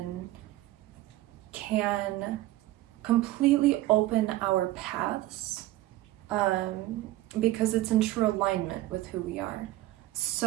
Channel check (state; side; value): quieter; left; 16.4 dB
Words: can completely open our paths, because it's in true alignment with who we are.